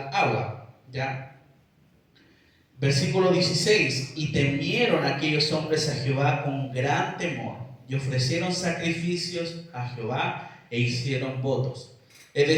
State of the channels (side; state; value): both; identical; correlation 1.00